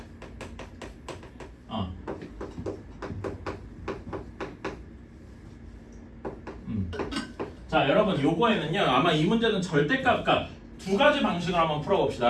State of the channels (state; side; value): identical; both; correlation 1.00